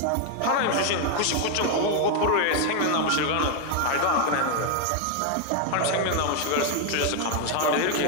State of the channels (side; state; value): both; different; correlation 0.01